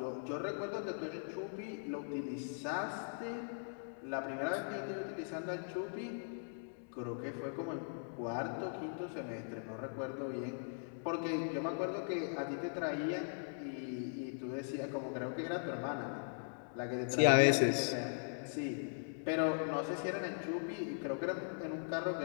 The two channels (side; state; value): right; silent; digital silence